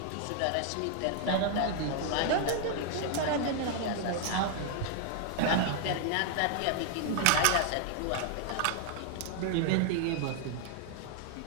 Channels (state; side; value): different; both; correlation 0.00